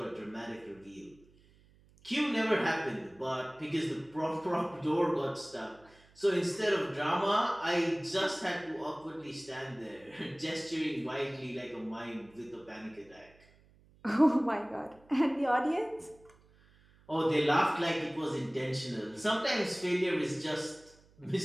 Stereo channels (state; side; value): noise; right; hum, 28 dB below the sound